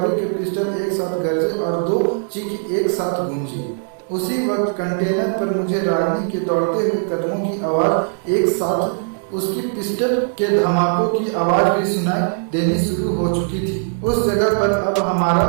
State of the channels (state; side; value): silent; left; digital silence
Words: के पिस्टल एक साथ गरजे और दो चीख एक साथ गूंजी। उसी वक्त कंटेनर पर मुझे रागिनी के दौड़ते हुए कदमों की आवाज एक साथ उसकी पिस्टल के धमाकों की आवाज भी सुनाई देनी शुरू हो चुकी थी। उस जगह पर अब हमारा